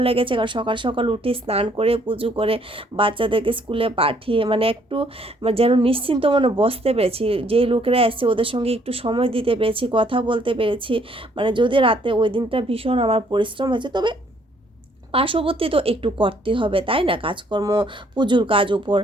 লেগেছে, কারণ সকাল সকাল উঠে স্নান করে পুজো করে বাচ্চাদেরকে স্কুলে পাঠিয়ে মানে একটু যেন নিশ্চিন্ত মনে বসতে পেরেছি, যেই লোকেরা এসছে ওদের সঙ্গে একটু সময় দিতে পেরেছি, কথা বলতে পেরেছি। মানে যদি রাতে ওই দিনটা ভীষণ আমার পরিশ্রম হয়েছে, তবে পার্শ্ববর্তী তো একটু করতে হবে, তাই না, কাজকর্ম, পুজোর কাজ উপর,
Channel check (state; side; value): normal; both; correlation 0.65